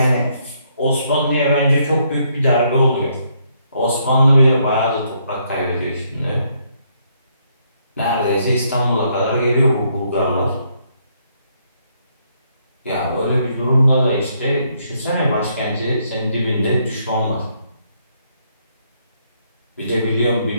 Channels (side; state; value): both; inverted; correlation -0.72